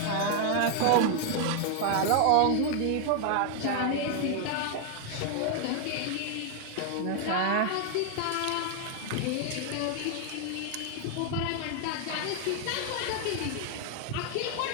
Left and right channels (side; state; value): both; different; correlation 0.00